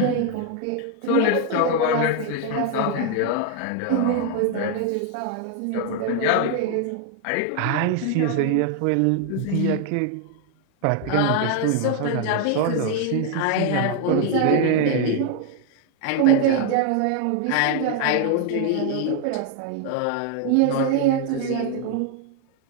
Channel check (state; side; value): different; both; correlation 0.00